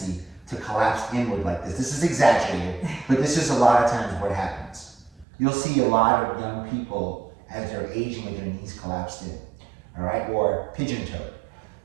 to collapse inward like this. This is exaggerated, but this is a lot of times what happens. You'll see a lot of young people as they're aging with their knees collapsed in, all right, or pigeon-toed.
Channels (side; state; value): left; drops out; at 5.2 s